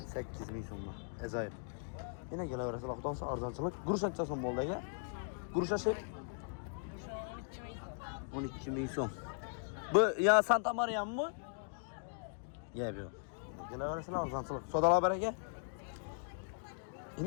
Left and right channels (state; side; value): silent; right; digital silence